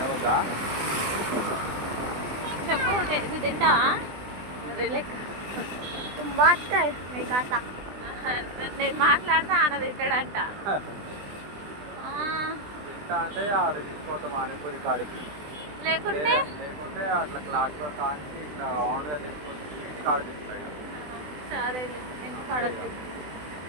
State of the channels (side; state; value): left; late; 20 ms